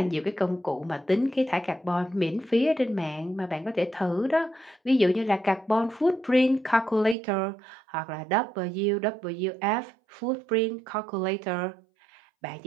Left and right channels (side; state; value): left; drops out; at 7.2 s